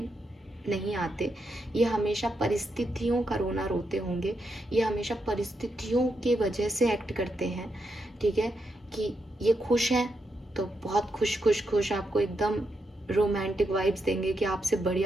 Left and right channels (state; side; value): normal; both; correlation 0.83